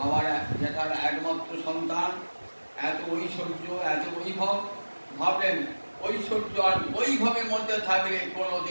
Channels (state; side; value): inverted; both; correlation -1.00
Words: যেটার একমাত্র সন্তান, এত ঐশ্বর্য, এত বৈভব, ভাবলেন ঐশ্বর্য আর বৈভবের মধ্যে থাকলে